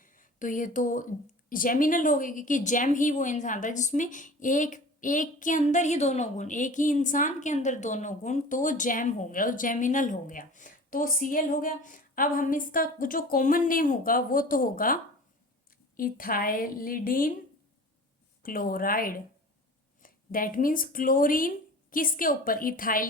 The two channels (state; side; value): normal; both; correlation 0.40